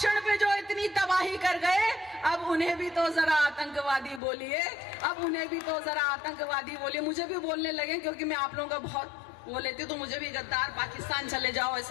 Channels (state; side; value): drops out; right; at 4.2 s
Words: पे जो इतनी तबाही कर गए, अब उन्हें भी तो जरा आतंकवादी बोलिए, अब उन्हें भी तो जरा आतंकवादी बोलिए। मुझे भी बोलने लगे क्योंकि मैं आप लोगों का बहुत वो लेती हूँ, तो मुझे भी गद्दार, पाकिस्तान चले जाओ,